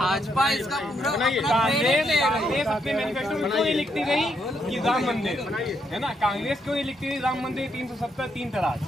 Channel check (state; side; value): normal; both; correlation 0.77